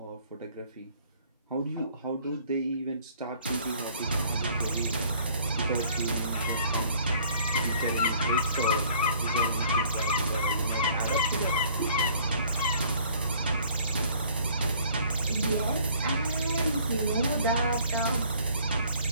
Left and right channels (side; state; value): both; inverted; correlation -0.56